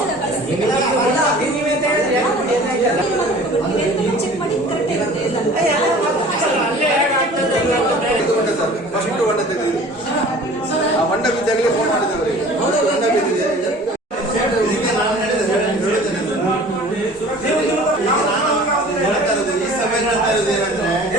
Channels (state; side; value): normal; both; correlation 0.45